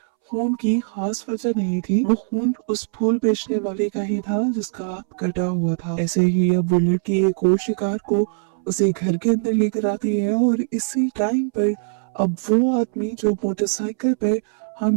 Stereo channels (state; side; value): silent; left; 65 dB below the other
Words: खून की खास वजह नहीं थी, वो खून उस फूल बेचने वाले का ही था जिसका कटा हुआ था। ऐसे ही अब वो लड़की एक और शिकार को उसे घर के अंदर लेकर आती है और इसी टाइम पर अब वो आदमी जो मोटरसाइकिल पर